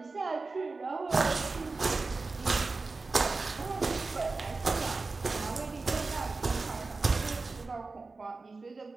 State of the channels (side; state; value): left; quieter; 3.8 dB